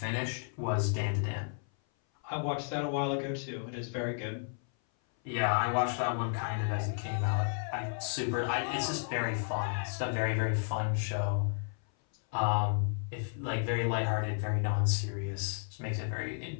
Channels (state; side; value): silent; right; 56 dB below the other